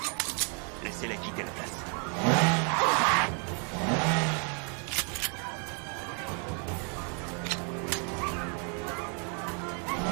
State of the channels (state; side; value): quieter; left; 38.5 dB